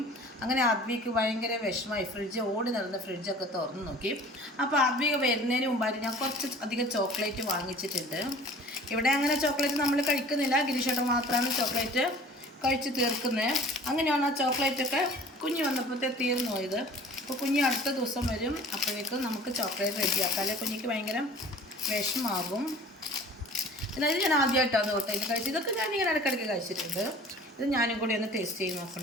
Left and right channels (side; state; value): both; normal; correlation 0.45